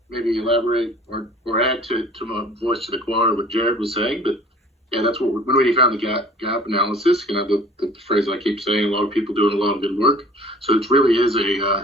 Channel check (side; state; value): both; normal; correlation 0.49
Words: maybe elaborate or add to my voice to the choir what Jared was saying, but yeah, that's what when we found the gap analysis. You know, the phrase I keep saying, a lot of people doing a lot of good work. So it really is